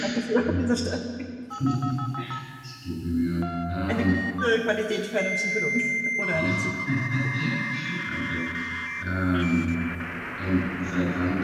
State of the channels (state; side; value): identical; both; correlation 1.00